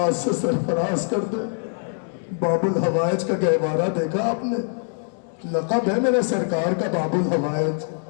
سے سرفراز کر دے۔ باب الحوائج کا گہوارہ دیکھا آپ نے؟ لقب ہے میرے سرکار کا باب الحوائج،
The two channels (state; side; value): silent; right; digital silence